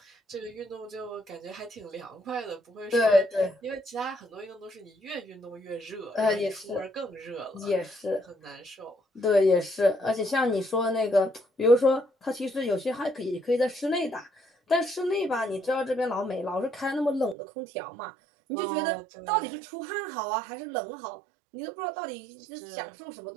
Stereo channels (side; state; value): left; drops out; at 17.4 s